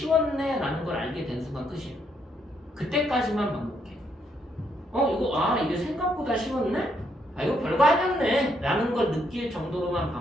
라는 걸 알게 된 순간 끝이야. 그때까지만 반복해. 이게 생각보다 쉬웠네? 이거 별거 아니었네 라는 걸 느낄 정도로만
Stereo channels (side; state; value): both; normal; correlation 0.74